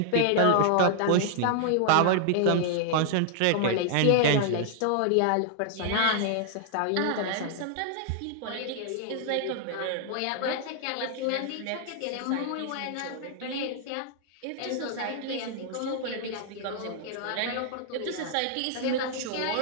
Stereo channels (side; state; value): both; different; correlation -0.01